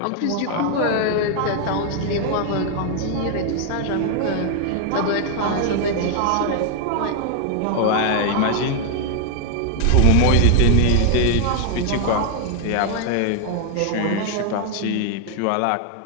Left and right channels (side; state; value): both; different; correlation 0.00